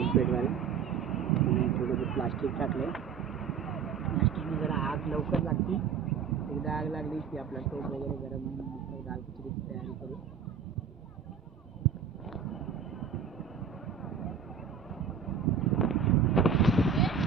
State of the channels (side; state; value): left; quieter; 6.9 dB